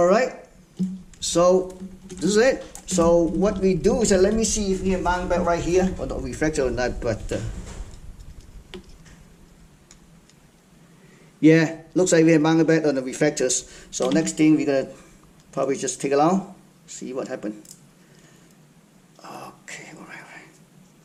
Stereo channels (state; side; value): identical; both; correlation 1.00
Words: So this is it. So what we do is let me see if we can mount back right here. Or not reflector or not, but yeah, looks like we have mounted back on the reflectors. So next thing we're gonna probably just take it out, see what happened. Okay,